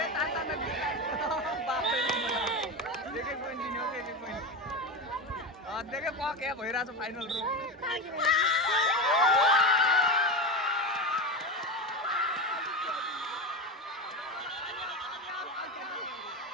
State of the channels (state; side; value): normal; both; correlation 0.20